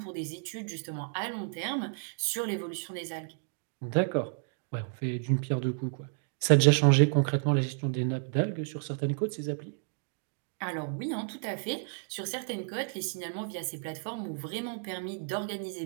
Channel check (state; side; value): silent; left; 57 dB below the other